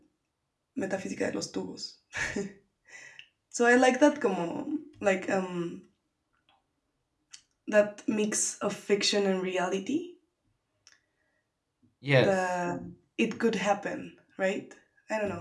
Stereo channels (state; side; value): identical; both; correlation 1.00